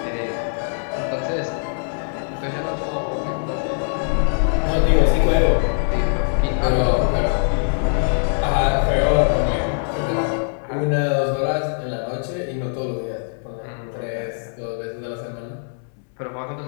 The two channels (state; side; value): silent; right; digital silence